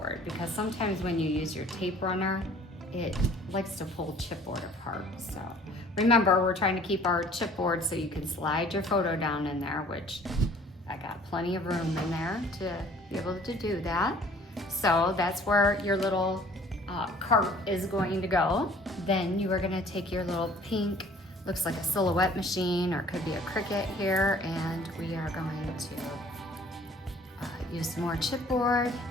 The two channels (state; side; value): normal; both; correlation 0.53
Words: because sometimes when you use your tape runner, it likes to pull chipboard apart. So remember, we're trying to keep our chipboard so you can slide your photo down in there, which I got plenty of room in there to be able to do that. So that's where your little cart is going to go. Then you are gonna take your little pink, looks like a silhouette machine or it could be a Cricut here, and we are going to use some more chipboard.